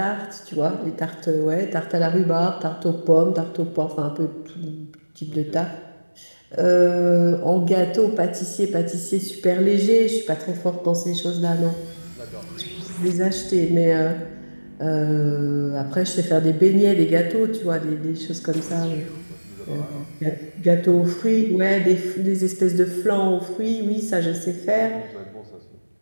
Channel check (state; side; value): inverted; both; correlation -1.00